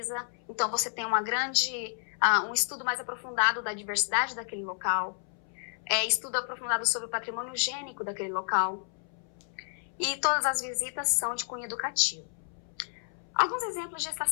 então você tem um estudo mais aprofundado da diversidade daquele local, estudo aprofundado sobre o patrimônio gênico daquele local, e todas as visitas são de cunho educativo. Alguns exemplos de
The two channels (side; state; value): right; silent; 57 dB below the other